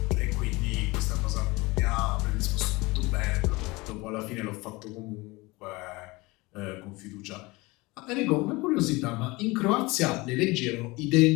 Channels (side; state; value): right; quieter; 23.2 dB